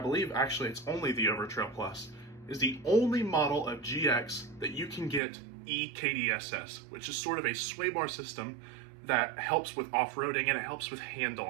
actually it's only the Overtrail Plus, is the only model of GX that you can get EKDSS, which is sort of a sway bar system that helps with off-roading and it helps with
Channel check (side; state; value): left; drops out; at 5.2 s